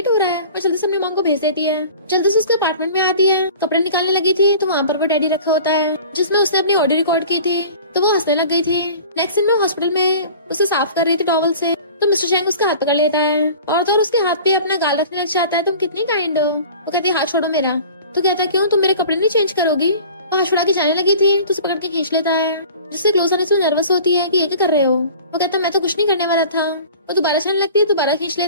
हो रहा है। और जल्दी से अपनी मॉम को भेज देती है। जल्दी से उसके अपार्टमेंट में आती है, कपड़े निकालने लगी थी तो वहाँ पर वो डैडी रखा होता है जिसमें उसने अपनी ऑडियो रिकॉर्ड की थी तो वो हंसने लग गई थी। नेक्स्ट दिन में हॉस्पिटल में उसे साफ कर रही थी टॉवल से तो मिस्टर शेंग उसका हाथ पकड़ लेता है और तो उसके हाथ पे अपना गाल रखने लग जाता है। तुम कितनी काइंड हो। वो कहती है हाथ छोड़ो मेरा। तो कहता है क्यों, तुम मेरे कपड़े नहीं चेंज करोगी? वो हाथ छुड़ा के जाने लगी थी तो उसे पकड़ के खींच लेता है जिससे क्लोज आने से नर्वस होती है कि ये क्या कर रहे हो। वो कहता है मैं तो कुछ नहीं करने वाला था। वो दोबारा जाने लगती है, दोबारा खींच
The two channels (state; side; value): inverted; both; correlation -0.43